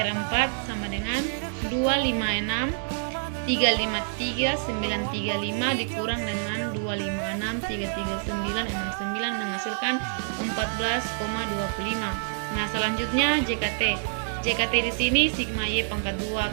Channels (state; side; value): silent; left; digital silence